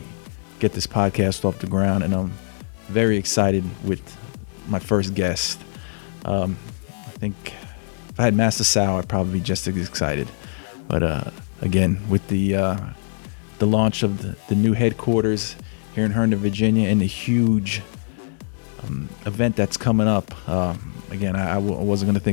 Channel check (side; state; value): right; silent; 64 dB below the other